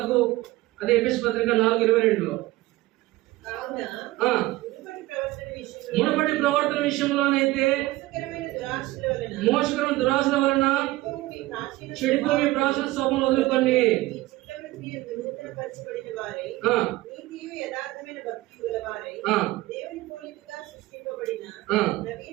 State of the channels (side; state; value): left; quieter; 18.7 dB